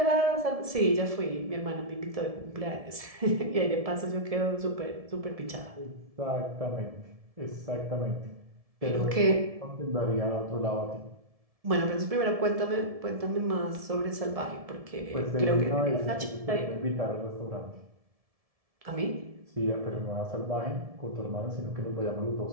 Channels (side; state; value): left; late; 1.7 ms